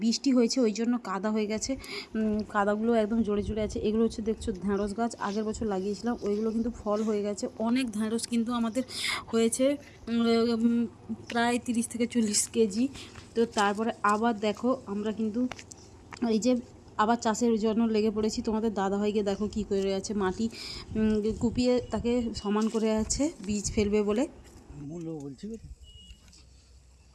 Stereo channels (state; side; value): identical; both; correlation 1.00